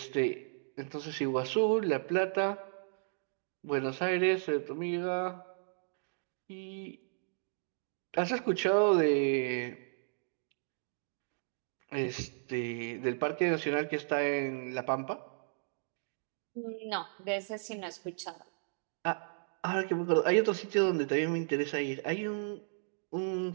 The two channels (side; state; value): left; silent; digital silence